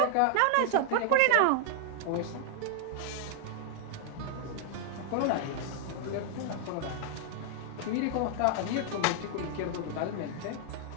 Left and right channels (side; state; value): both; different; correlation -0.01